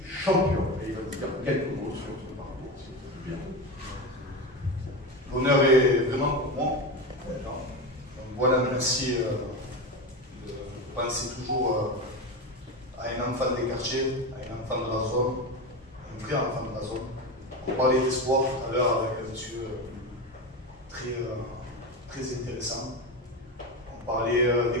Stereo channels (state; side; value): normal; both; correlation 0.20